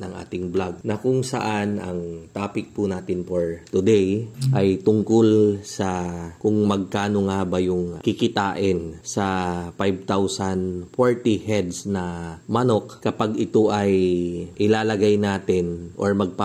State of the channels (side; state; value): both; identical; correlation 1.00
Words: ating vlog na kung saan ang topic po natin for today ay tungkol sa kung magkano nga ba yung kikitain sa 5,040 heads na manok kapag ito ay ilalagay natin or